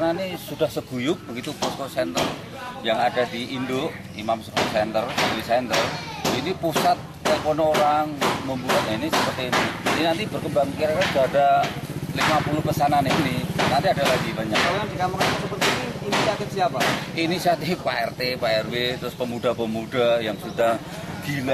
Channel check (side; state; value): both; identical; correlation 1.00